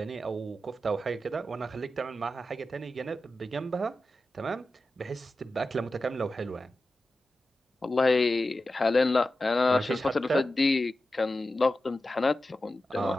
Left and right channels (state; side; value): normal; both; correlation 0.92